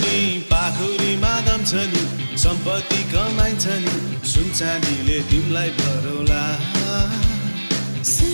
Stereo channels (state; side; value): inverted; both; correlation -1.00